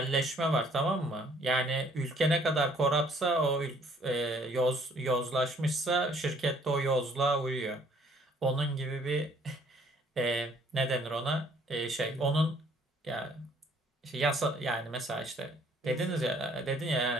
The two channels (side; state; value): both; normal; correlation 0.61